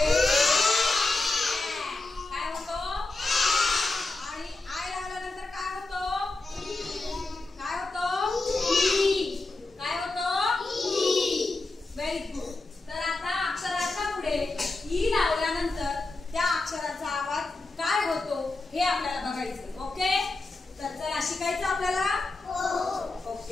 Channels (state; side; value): quieter; right; 3.2 dB